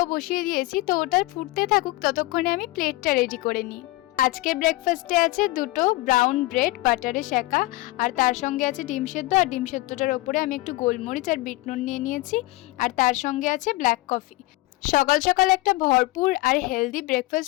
বসিয়ে দিয়েছি, তো ওটা ফুটতে থাকুক, ততক্ষণে আমি প্লেটটা রেডি করে নিই। আজকের ব্রেকফাস্টে আছে দুটো ব্রাউন ব্রেড বাটারে সেঁকা, আর তার সঙ্গে আছে ডিম সেদ্ধ। আর ডিম সেদ্ধটার ওপরে আমি একটু গোলমরিচ আর বিট নুন নিয়ে নিয়েছি। আর তার সঙ্গে আছে ব্ল্যাক কফি। সকাল সকাল একটা ভরপুর আর হেলদি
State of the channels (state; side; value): quieter; right; 19.7 dB